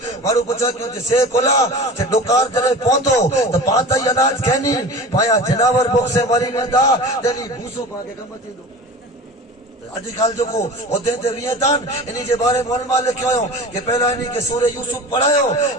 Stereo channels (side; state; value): both; normal; correlation 0.36